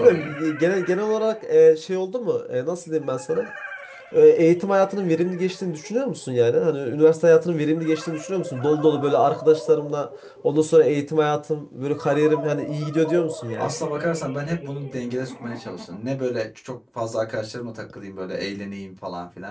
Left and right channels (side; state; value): both; identical; correlation 1.00